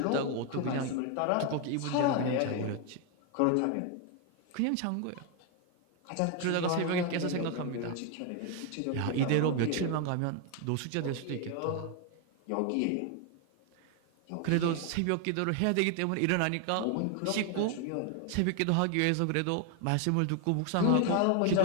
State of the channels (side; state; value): both; different; correlation 0.01